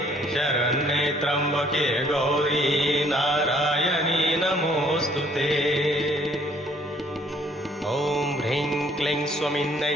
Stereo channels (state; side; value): normal; both; correlation 0.62